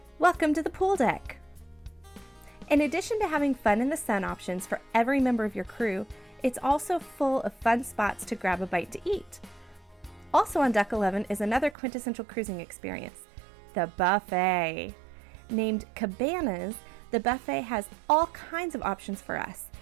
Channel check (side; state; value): left; drops out; at 11.8 s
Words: Welcome to the pool deck! In addition to having fun in the sun options for every member of your crew, it's also full of fun spots to grab a bite to eat. Also on Deck 11 is another quintessential cruising experience, the buffet. Named Cabanas, the buffet has all kinds of options for us